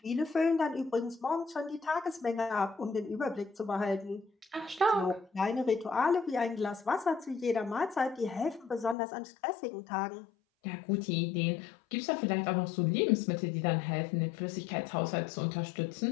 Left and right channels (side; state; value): right; drops out; at 9.0 s